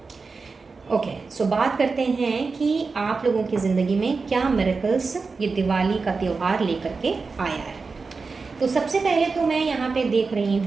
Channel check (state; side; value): quieter; left; 4.4 dB